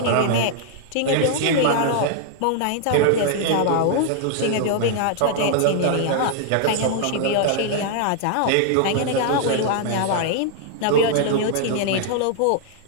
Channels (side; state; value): both; different; correlation -0.01